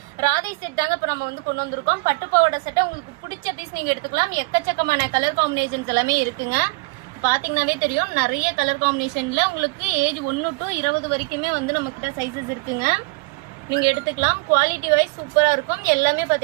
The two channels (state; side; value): quieter; left; 27.1 dB